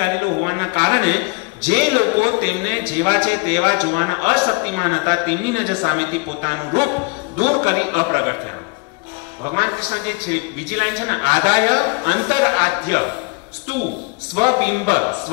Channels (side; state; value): right; quieter; 29.2 dB